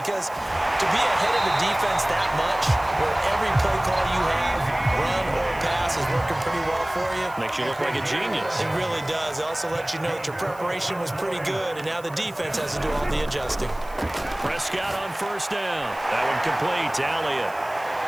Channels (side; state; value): right; noise; hiss, 23 dB below the sound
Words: to be ahead of the defense that much, where every play call you have, run or pass, is working pretty well for you. Makes you look like a genius. It really does. It also lets you know that your preparation was pretty good, and now the defense has to do all the adjusting. Prescott on 1st down. That one complete to Elliott.